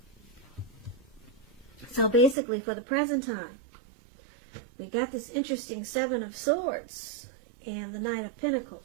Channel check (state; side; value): drops out; left; at 2.4 s